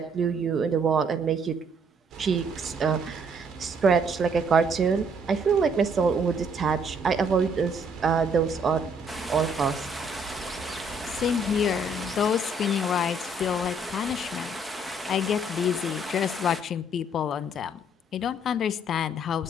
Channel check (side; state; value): both; normal; correlation 0.65